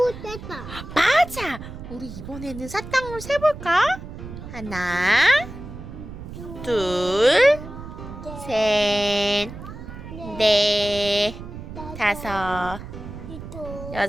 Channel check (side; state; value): right; noise; rumble, 12 dB below the sound